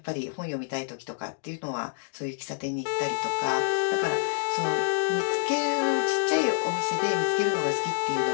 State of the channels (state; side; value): silent; right; digital silence